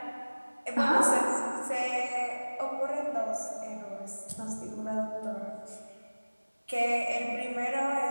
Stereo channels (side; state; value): both; inverted; correlation -1.00